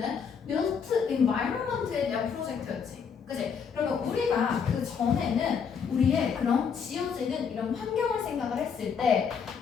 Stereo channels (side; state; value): right; quieter; 6.6 dB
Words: built environment에 대한 프로젝트였지. 그치? 그러면 우리가 그 전에는 우리의 그런 지어지는 이런 환경을 생각을 했을 때